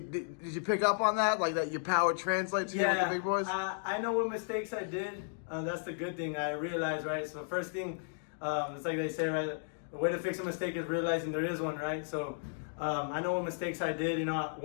did you pick up on that? Like that your power translates here with the big boys? I know what mistakes I did. That's the good thing. I realized, right? So the first thing, it's like they say, right? The way to fix a mistake is realizing there is one, right? So I know what mistakes I did. You know,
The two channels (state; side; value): silent; right; digital silence